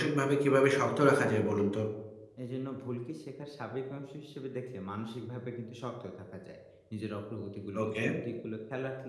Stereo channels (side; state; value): both; identical; correlation 1.00